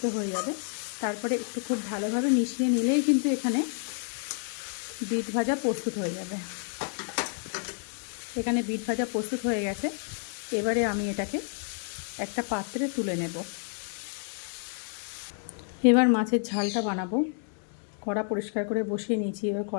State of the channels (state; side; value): silent; right; 58 dB below the other